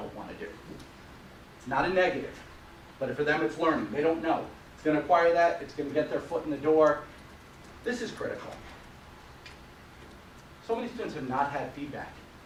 want to do. It's not a negative, but for them it's learning. They don't know. It's going to acquire that. It's going to get their foot in the door. This is critical. So many students have not had feedback.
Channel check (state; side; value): identical; both; correlation 1.00